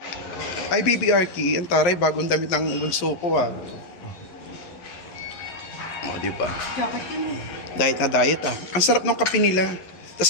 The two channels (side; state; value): right; late; 11 ms